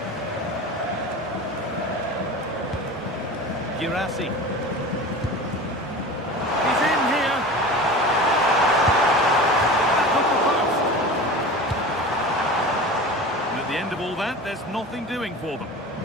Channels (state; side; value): normal; both; correlation 0.34